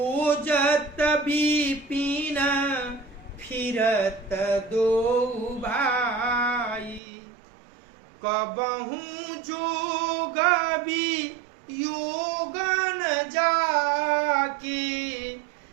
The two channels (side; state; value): left; drops out; at 7.0 s